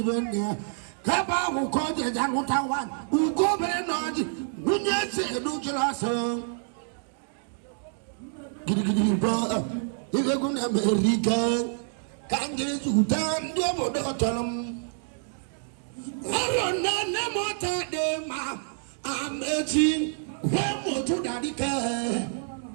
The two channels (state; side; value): silent; left; digital silence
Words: there. Kaba who called the Jamuta one, who go very naughty. When you say, do you last song? Giddy, brother, if you're going to America. Kanjiri Sudan dobo dotolam. Arona nemota de ma amechi wemo to dadika.